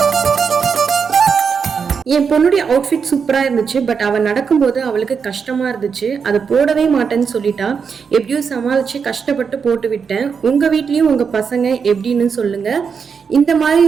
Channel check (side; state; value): left; quieter; 6.1 dB